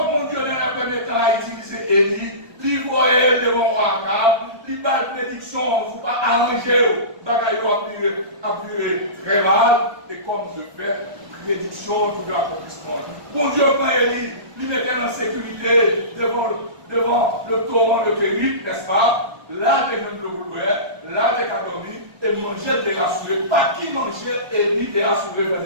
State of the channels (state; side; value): late; left; 1.2 ms